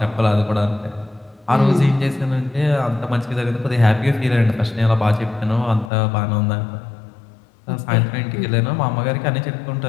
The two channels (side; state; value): right; drops out; at 5.9 s